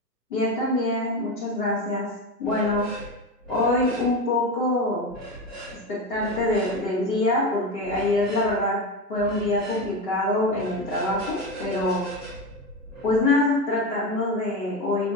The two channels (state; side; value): normal; both; correlation 0.20